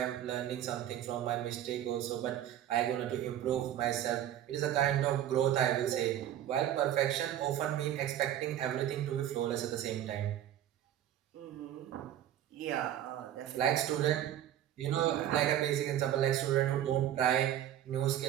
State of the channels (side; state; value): left; quieter; 11.5 dB